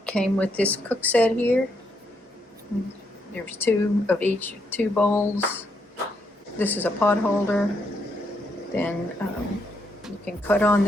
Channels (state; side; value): normal; both; correlation 0.77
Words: came with this cook set here. There's two of each, 2 bowls. This is a pot holder. Then you can cut on